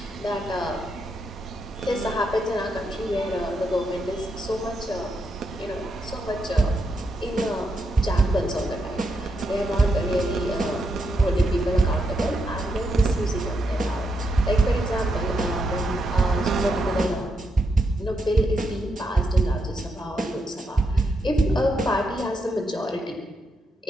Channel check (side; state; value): both; normal; correlation 0.82